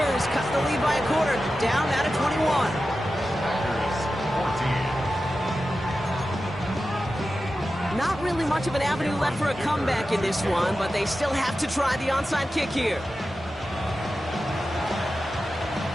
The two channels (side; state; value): both; normal; correlation 0.92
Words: cut the lead by a quarter, down out of 21. Not really much of an avenue left for a comeback in this one, but they still have to try the onside kick here.